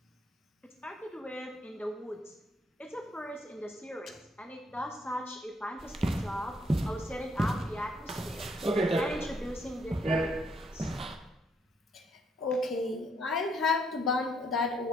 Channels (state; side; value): normal; both; correlation 0.71